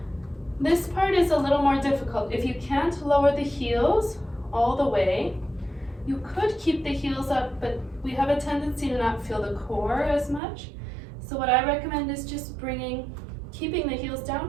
This part is a little more difficult. If you can't lower the heels all the way, you could keep the heels up, but we have a tendency to not feel the core as much. So what I recommend is just keeping the heels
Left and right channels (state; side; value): drops out; left; at 10.4 s